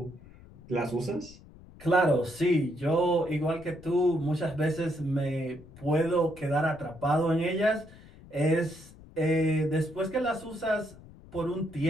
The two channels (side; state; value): left; noise; rumble, 21 dB below the sound